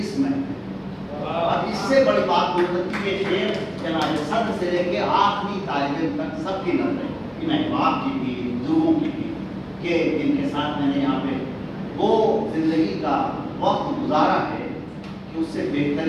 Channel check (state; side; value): identical; both; correlation 1.00